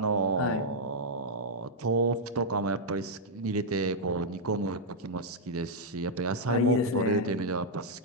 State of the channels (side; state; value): both; normal; correlation -0.05